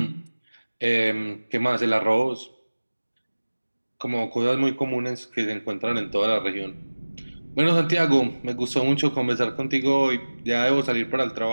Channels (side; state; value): both; inverted; correlation -1.00